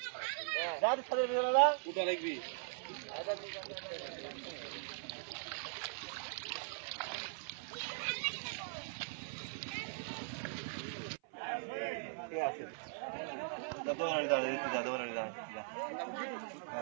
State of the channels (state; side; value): silent; left; 51 dB below the other